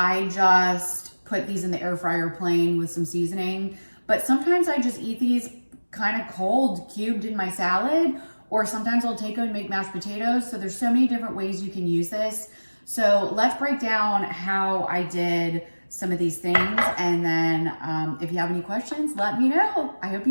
just put these in the air fryer plain with some seasoning. But sometimes I just eat these kind of cold, cubed in my salad, or sometimes I'll take them and make mashed potatoes. So there's so many different ways you can use this. So let's break down how I did some of these things. And then if you have any questions, let me know. I hope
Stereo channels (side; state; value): both; inverted; correlation -1.00